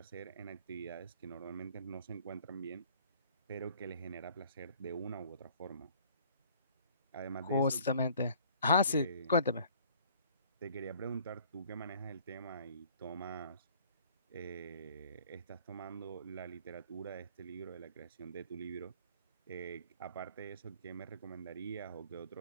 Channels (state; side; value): inverted; both; correlation -0.55